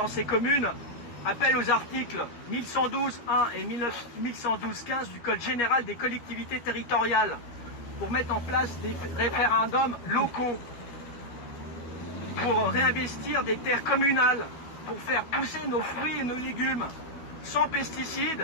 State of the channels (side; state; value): right; late; 12 ms